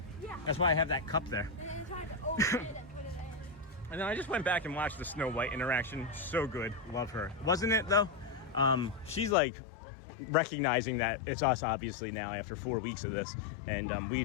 Yeah. That's why I have that cup there. And then try to open it and put it in. And then I just went back and watched the Snow White interaction. So good. Love her. Wasn't it, though? She's like recognizing that it's us, obviously, now after 4 weeks of this. And we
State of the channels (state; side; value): drops out; right; at 9.3 s